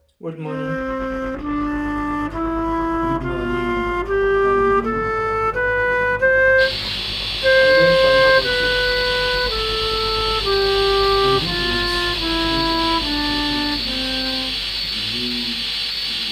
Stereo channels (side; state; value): both; identical; correlation 1.00